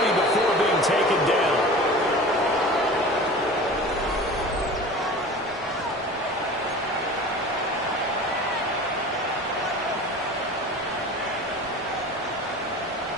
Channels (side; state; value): both; normal; correlation 0.37